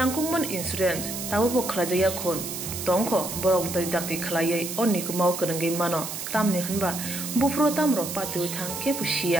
इंश्योरेंस ताबो खलाजाया खन तंखो बरक दाक्ति खलायै अनिकुमाव गोरोंगै मानो तामनि होनबा बुफ्रो तामरो पातु थांके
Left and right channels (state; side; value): noise; right; hiss, 6 dB below the sound